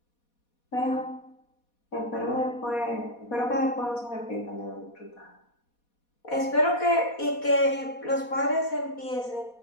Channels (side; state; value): right; late; 4.2 ms